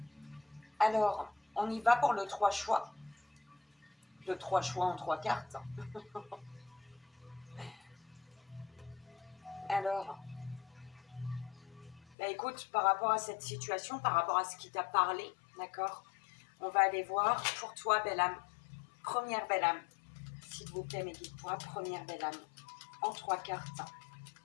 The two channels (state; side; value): drops out; right; at 12.2 s